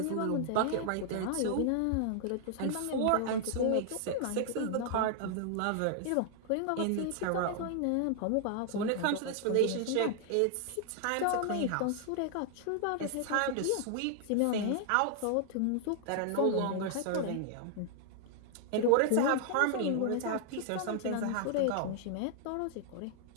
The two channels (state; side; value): different; both; correlation 0.00